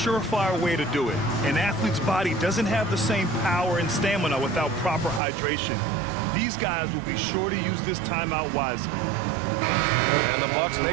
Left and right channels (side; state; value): left; drops out; at 5.2 s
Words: way to do it. An athlete's body doesn't have the same power and stamina without proper hydration. These guys will be sure to use this timeout wisely. And the Bucks